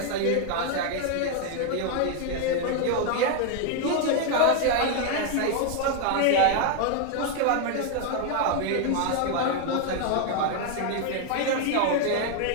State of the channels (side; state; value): both; different; correlation 0.01